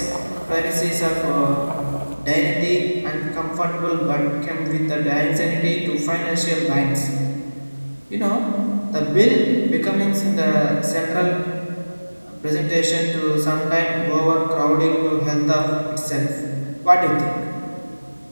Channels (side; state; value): both; inverted; correlation -1.00